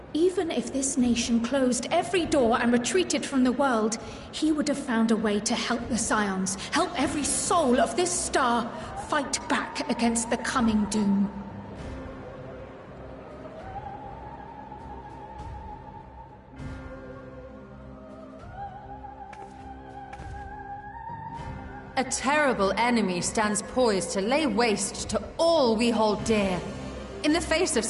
Even if this nation closed every door and retreated from the world, he would have found a way to help the Scions, help every soul of this star fight back against the coming doom. A terrible enemy stands poised to lay waste to all we hold dear. In the face of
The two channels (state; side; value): identical; both; correlation 1.00